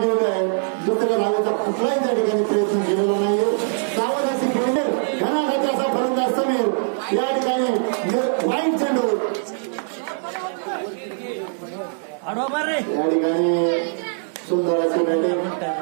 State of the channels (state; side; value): silent; left; digital silence